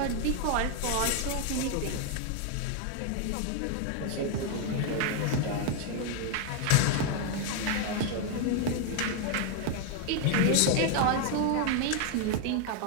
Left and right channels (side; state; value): both; different; correlation 0.01